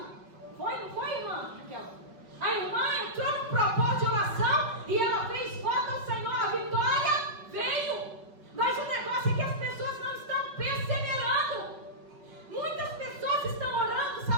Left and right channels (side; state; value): left; late; 5.4 ms